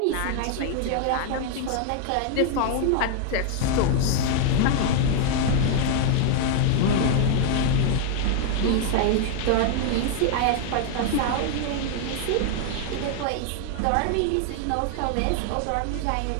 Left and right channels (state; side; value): different; both; correlation 0.00